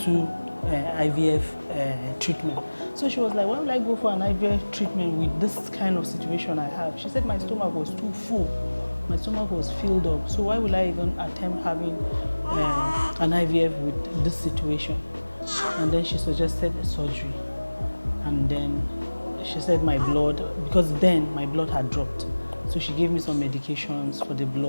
2 IVF treatment. So she was like, why will I go for an IVF treatment with this kind of situation I have? She said my stomach was too full. My stomach was filled up. So why will I even attempt having an IVF with this situation? And then she suggested a surgery. And then she said my blood, because then my blood had dropped. So she gave me some medications for the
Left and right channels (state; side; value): inverted; both; correlation -1.00